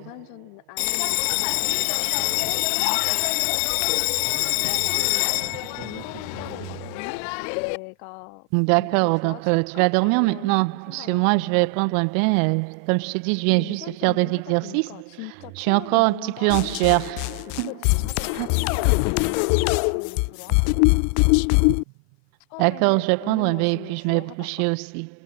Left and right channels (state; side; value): different; both; correlation 0.00